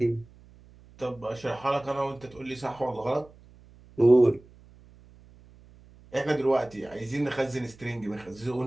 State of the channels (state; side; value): noise; right; hum, 25 dB below the sound